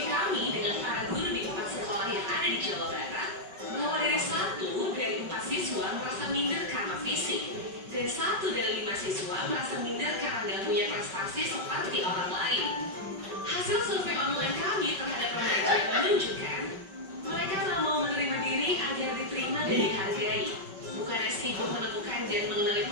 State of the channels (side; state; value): left; late; 5.3 ms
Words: kami dengan para guru di 4 sekolah yang ada di Jawa Barat, bahwa dari 1 dari 4 siswa merasa minder karena fisik, dan 1 dari 5 siswa merasa minder karena tidak punya prestasi seperti orang lain. Hasil survei online kami terhadap remaja menunjukkan mereka tak mau menerima diri agar diterima dan dihargai. Bukannya sibuk menemukan dan mengenali